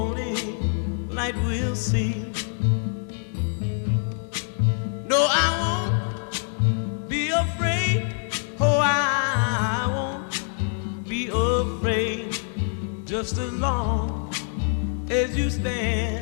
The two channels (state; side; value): silent; right; 62 dB below the other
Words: light we'll see. No, I won't be afraid. Oh, I won't be afraid. Just as long as you